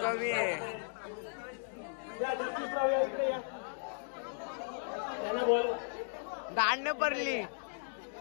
आहे या जगदीशराव या इकडे या त्यांना बोल दांड पडली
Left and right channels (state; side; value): silent; right; digital silence